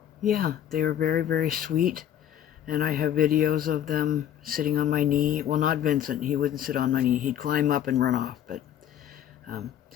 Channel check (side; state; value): right; quieter; 10.5 dB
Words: yeah, they are very, very sweet. And I have videos of them sitting on my knee. Well, not Vincent. He wouldn't sit on my knee. He'd climb up and run off. But